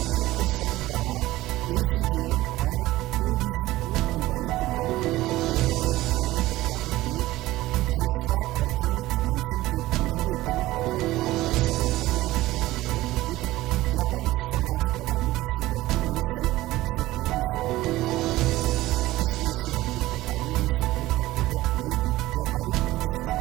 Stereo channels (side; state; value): left; quieter; 17.1 dB